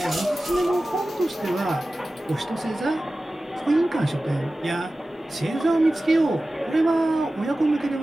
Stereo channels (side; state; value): both; normal; correlation 0.96